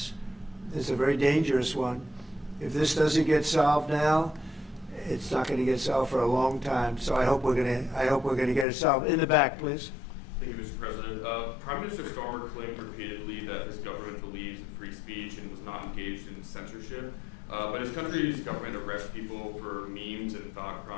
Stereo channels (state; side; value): drops out; right; at 8.7 s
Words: It's a very dangerous one. If this doesn't get solved now, it's not going to get solved for a long time. So I hope we're going to get it solved. In the back, please. Thank you, Mr. President. Prime Minister Starmer claimed repeatedly that his government believes in free speech and was not engaged in censorship. But his country's government arrests people for memes and thought